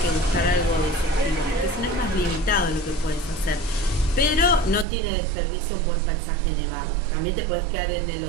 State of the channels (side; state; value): left; drops out; at 4.9 s